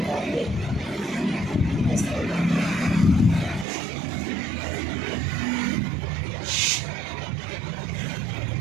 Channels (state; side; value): drops out; left; at 3.7 s